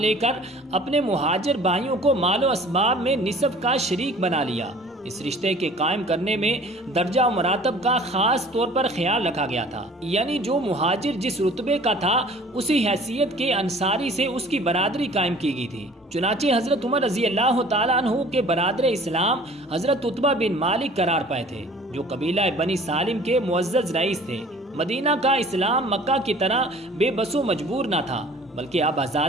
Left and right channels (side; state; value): both; normal; correlation 0.48